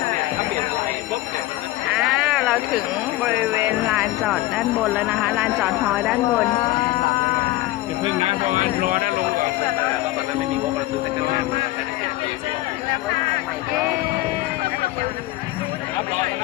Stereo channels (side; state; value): right; quieter; 17.4 dB